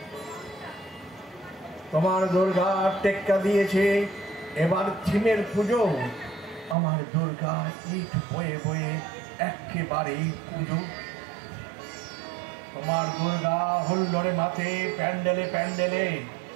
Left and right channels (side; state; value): left; drops out; at 6.8 s